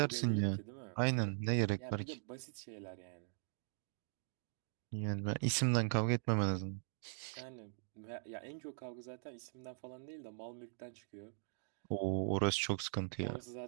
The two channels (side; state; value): left; silent; digital silence